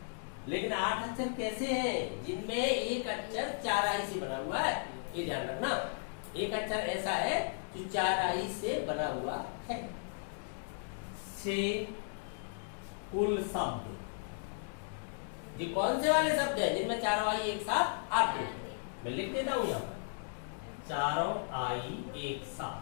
लेकिन 8 अक्षर कैसे हैं? जिनमें एक अक्षर 4 I से बना हुआ है, ये ध्यान रखना। एक अक्षर ऐसा है जो 4 I से बना हुआ है। से कुल शब्द, ये कौन से वाले शब्द हैं जिनमें 4 I एक साथ आते हैं? मैं लिख देता हूं यहाँ पर चारों आई एक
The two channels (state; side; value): silent; right; digital silence